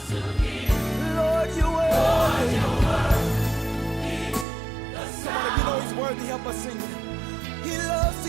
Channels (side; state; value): left; drops out; at 4.5 s